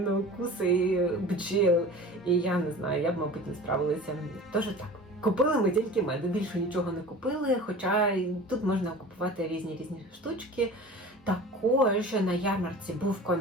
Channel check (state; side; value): normal; both; correlation 0.39